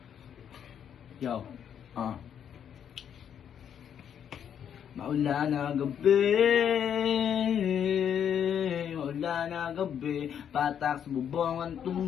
Yo, maulan na gabi, patak sa bubong ang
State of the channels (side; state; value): right; quieter; 8.7 dB